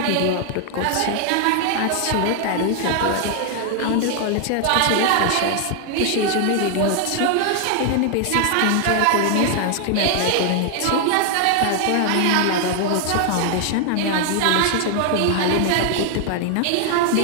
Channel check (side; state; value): both; different; correlation 0.00